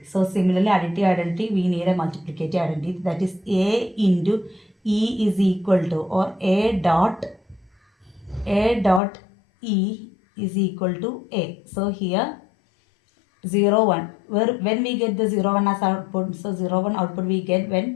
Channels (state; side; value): drops out; right; at 9.0 s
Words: So similarly, additive identity, we need a multiplicative identity. That is A into E is equal to, or A dot E is equal to A. So here 0, 1. When we get the 0, 1 as output, so 0, 1 output we get